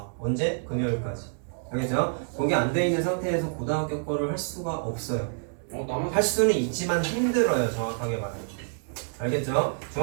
언제? 금요일까지. 알겠죠? 그게 안 돼 있는 상태에서 고등학교 거를 할 수가 없어요. 할 수는 있지만 힘들어요. 정확하게 말하면. 알겠죠?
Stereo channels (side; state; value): left; silent; digital silence